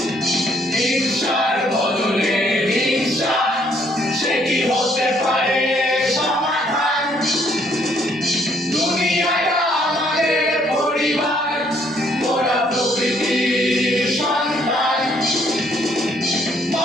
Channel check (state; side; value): normal; both; correlation 0.66